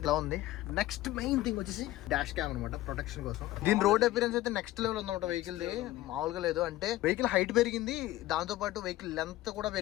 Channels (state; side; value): quieter; right; 16.3 dB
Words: ఉంది. నెక్స్ట్ మెయిన్ థింగ్ వచ్చేసి డాష్ క్యామ్ అనమాట, ప్రొటెక్షన్ కోసం. దీని రోడ్ అపిరెన్స్ అయితే నెక్స్ట్ లెవెల్ ఉందన్నమాట వెహికల్ ది, మామూలుగా లేదు. అంటే వెహికల్ హైట్ పెరిగింది, దాంతో పాటు వెహికల్ లెంత్ కూడా